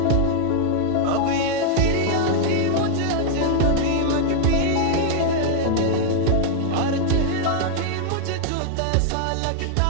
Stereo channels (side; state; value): both; different; correlation -0.01